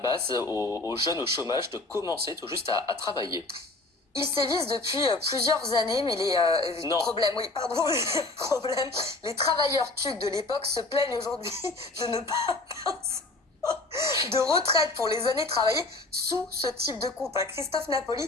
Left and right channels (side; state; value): right; quieter; 3.1 dB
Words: aux jeunes au chômage de commencer tout juste à travailler. Ils sévissent depuis plusieurs années, mais les Non. problèmes, oui, pardon, les problèmes, les travailleurs TUC de l'époque se plaignent aujourd'hui de ne pas de retraite pour les années travaillées sous ce type de contrat. Christophe Napoli,